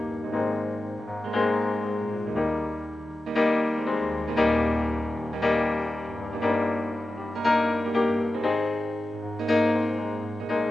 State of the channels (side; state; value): both; normal; correlation 0.93